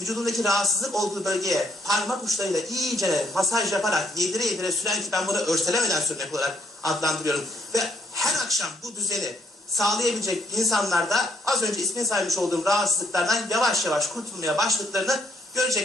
rahatsızlık olduğu bölgeye parmak uçlarıyla iyice masaj yaparak yedire yedire süren, ki ben bunu örselemeden sürmek olarak adlandırıyorum. Ve her akşam bu düzeni sağlayabilecek insanlarda az önce ismini saymış olduğum rahatsızlıklardan yavaş yavaş kurtulmaya başladıklarını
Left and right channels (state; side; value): normal; both; correlation 0.71